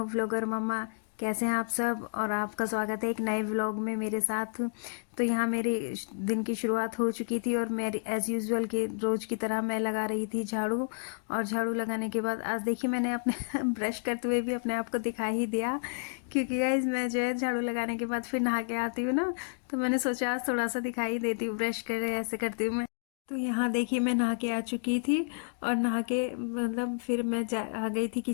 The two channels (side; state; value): right; silent; digital silence